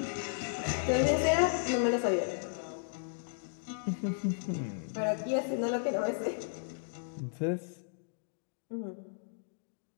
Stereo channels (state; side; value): silent; right; digital silence